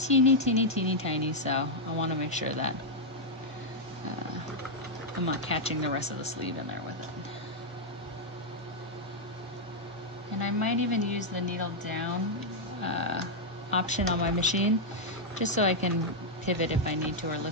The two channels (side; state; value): both; normal; correlation -0.03